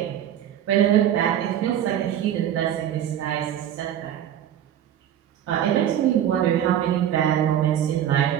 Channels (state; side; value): quieter; left; 10.5 dB